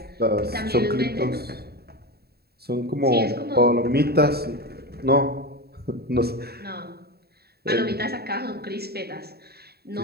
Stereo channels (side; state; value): left; late; 0.46 ms